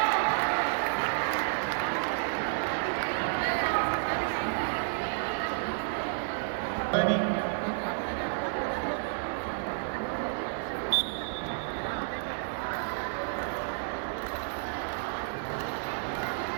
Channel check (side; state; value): left; silent; digital silence